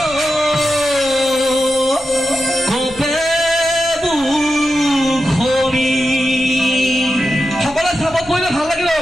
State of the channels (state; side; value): noise; left; rumble, 20 dB below the sound